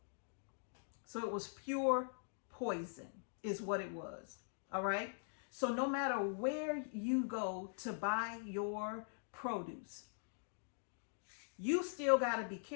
So it was pure poison is what it was. All right? So no matter where you go to buy your produce, you still got to be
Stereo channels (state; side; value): silent; right; digital silence